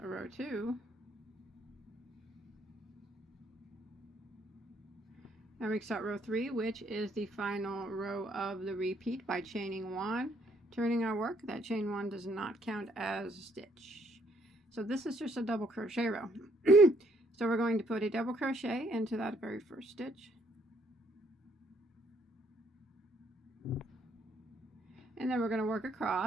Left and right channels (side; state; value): both; normal; correlation 0.68